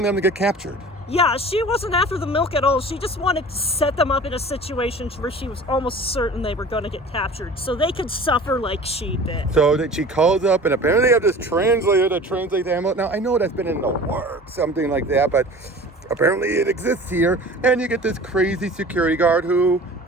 them to get captured. Yeah, she wasn't after the milk at all. She just wanted to set them up in a situation where she was almost certain they were going to get captured, so they could suffer like she did. So that she calls up, and apparently they have this translator to translate the ammo. Now, I know that's been in the works, something like that, but apparently it exists here, and you get this crazy security guard who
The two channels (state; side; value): normal; both; correlation 0.41